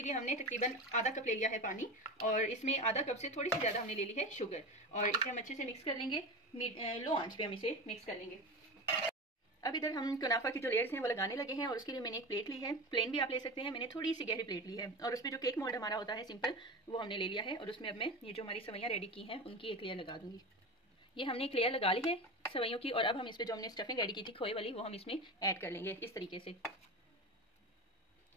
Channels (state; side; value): normal; both; correlation 0.26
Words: लिए हमने तकरीबन आधा कप ले लिया है पानी, और इसमें आधा कप से थोड़ी सी ज़्यादा हमने ले ली है शुगर, और इसे हम अच्छे से मिक्स कर लेंगे। लो आंच पे हम इसे मिक्स कर लेंगे। अब इधर हम कुनाफा की जो लेयर्स हैं वो लगाने लगे हैं, और उसके लिए मैंने एक प्लेट ली है। प्लेन भी आप ले सकते हैं, मैंने थोड़ी सी गहरी प्लेट ली है, और उसमें जो केक मोल्ड हमारा होता है सिंपल, वो हमने ले लिया है। और उसमें अब मैं ये जो हमारी सवैयाँ रेडी की हैं उनकी एक लेयर लगा दूंगी। ये हमने एक लेयर लगा ली है सवैयों की, और अब हम इस पर जो हमने स्टफिंग रेडी की थी खोए वाली, वो हम इसमें ऐड कर लेंगे इस तरीके से।